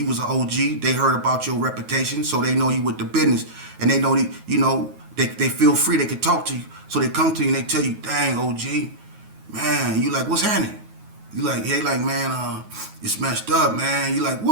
was an OG, they heard about your reputation, so they know you with the business, and they know, they feel free, they can talk to you. So they come to you and they tell you, dang, OG, man, you like, what's happening? You like, hey, like, man, it's messed up, man. You like,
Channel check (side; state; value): left; late; 9.4 ms